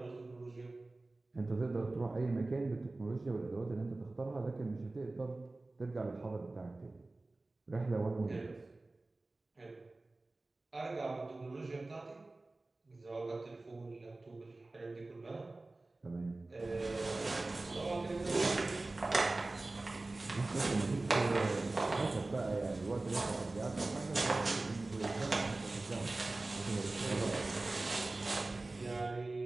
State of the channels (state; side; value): quieter; left; 3.1 dB